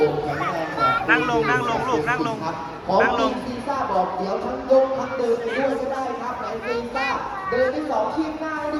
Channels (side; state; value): both; identical; correlation 1.00